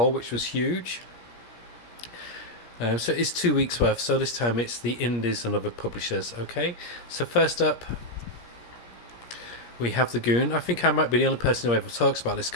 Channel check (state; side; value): late; right; 17 ms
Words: which was huge. So it's 2 weeks worth. So this time it's the indies and other publishers. Okay. So first up, we have the Goon. I think I might be the only person who ever talks about this